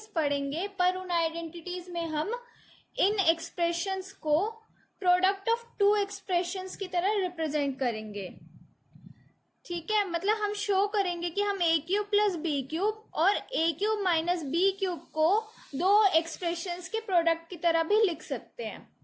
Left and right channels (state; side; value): identical; both; correlation 1.00